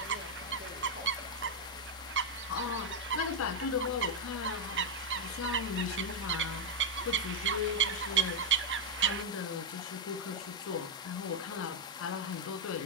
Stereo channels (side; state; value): both; normal; correlation 0.01